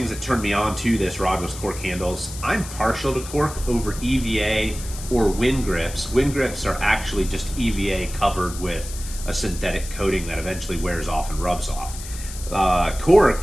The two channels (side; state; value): left; noise; hiss, 12 dB below the sound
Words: that turned me on to this rod was cork handles. I'm partial to cork over EVA or wind grips. Wind grips are actually just EVA covered with a synthetic coating that eventually wears off and rubs off.